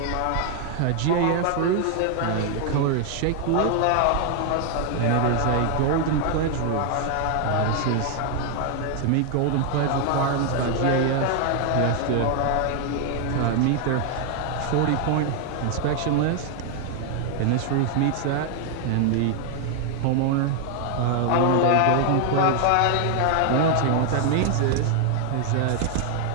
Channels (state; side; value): different; both; correlation 0.00